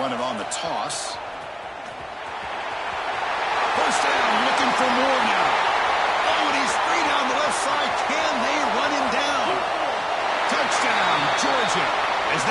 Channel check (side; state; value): both; identical; correlation 1.00